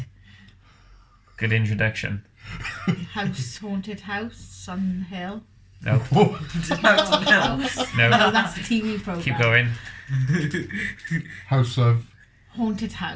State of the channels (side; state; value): both; identical; correlation 1.00